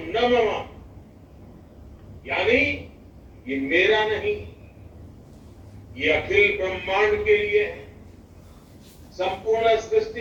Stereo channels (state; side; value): identical; both; correlation 1.00